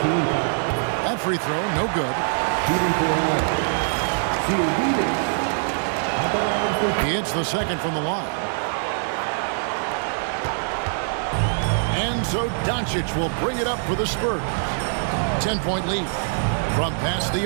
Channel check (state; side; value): silent; left; digital silence